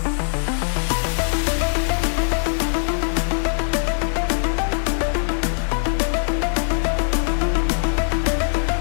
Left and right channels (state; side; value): silent; right; 65 dB below the other